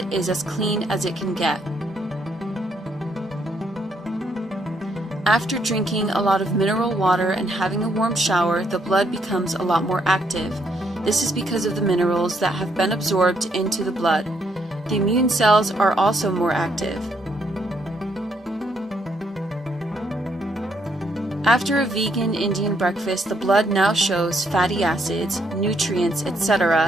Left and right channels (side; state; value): both; normal; correlation 0.73